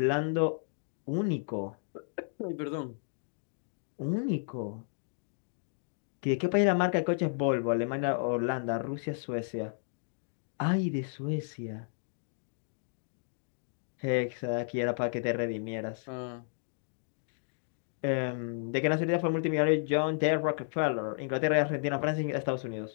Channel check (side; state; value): right; silent; digital silence